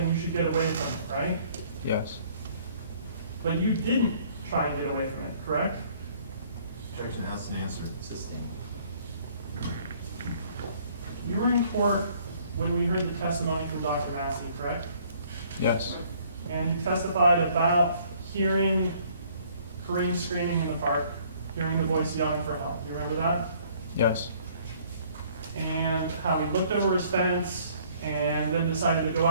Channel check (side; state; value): both; inverted; correlation -0.60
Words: you should get away from it, right? Yes. But you didn't try and get away from it, correct? Objection, asked and answered. Sustained. You were in court when we heard the testimony from Dr. Massey, correct? Yes. And you testified about hearing Karim screaming in the park, hearing the voice yelling for help. You remember that? Yes. And how he looked over his fence and then decided to go